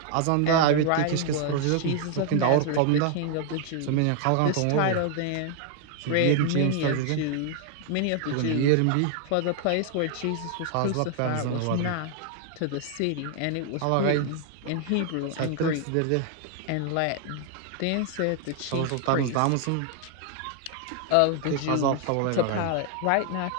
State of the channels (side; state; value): both; different; correlation 0.00